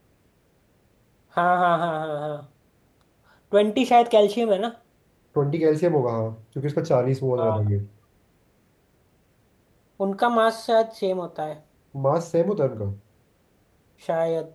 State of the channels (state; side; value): identical; both; correlation 1.00